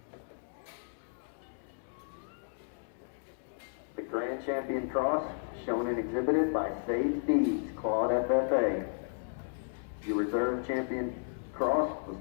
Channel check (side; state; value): right; silent; digital silence